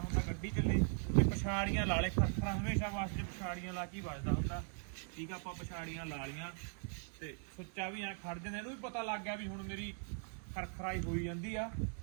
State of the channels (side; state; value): left; silent; 51 dB below the other